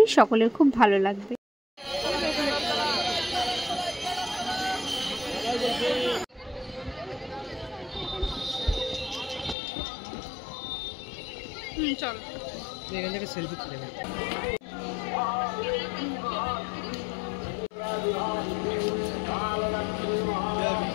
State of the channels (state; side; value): drops out; right; at 9.6 s